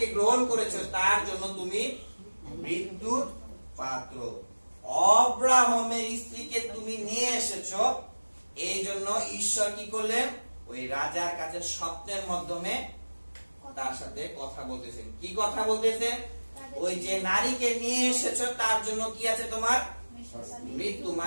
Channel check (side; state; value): both; inverted; correlation -1.00